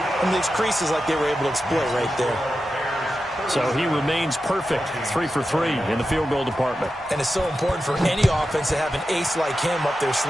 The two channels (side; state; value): both; normal; correlation 0.91